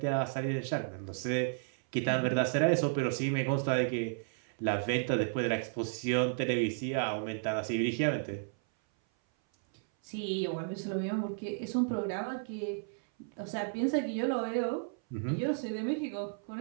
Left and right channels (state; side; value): silent; left; 56 dB below the other